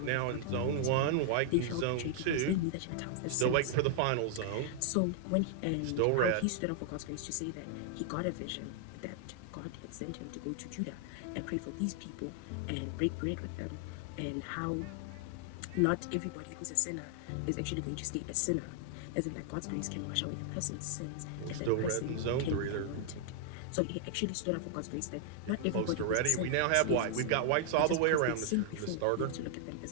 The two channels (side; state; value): both; different; correlation 0.00